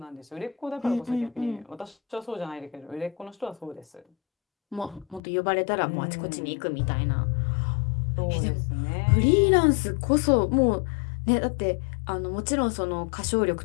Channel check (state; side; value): drops out; right; at 5.2 s